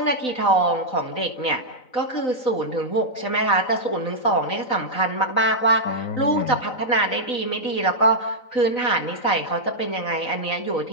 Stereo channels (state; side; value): late; right; 4.0 ms